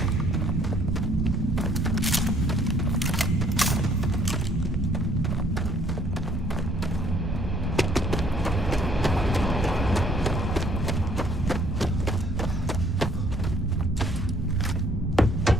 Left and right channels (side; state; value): both; normal; correlation 0.63